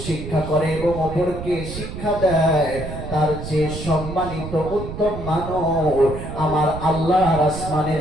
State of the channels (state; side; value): noise; right; rumble, 9 dB below the sound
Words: শিক্ষা করে এবং অপরকে শিক্ষা দেয়, তার চেয়ে সম্মানিত উত্তম মানুষ আমার আল্লাহর আসমানের